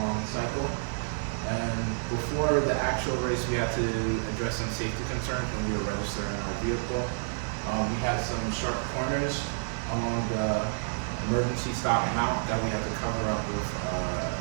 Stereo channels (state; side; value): silent; left; digital silence